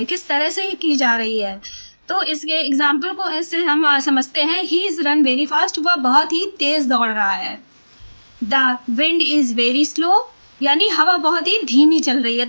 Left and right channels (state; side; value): inverted; both; correlation -1.00